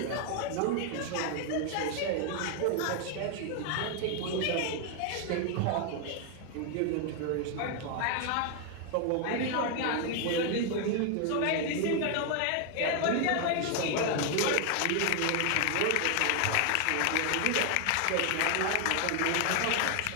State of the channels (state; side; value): different; both; correlation 0.00